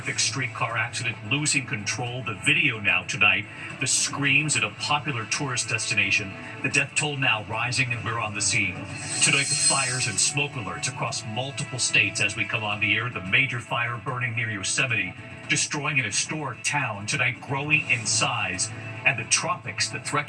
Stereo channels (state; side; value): identical; both; correlation 1.00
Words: streetcar accident, losing control. The video now tonight. The screams at a popular tourist destination. The death toll now rising, and we're on the scene. Tonight, the fires and smoke alerts across multiple states as we come on the air. The major fire burning near Yosemite, destroying an historic town. Tonight, growing in size. And the tropics, the threat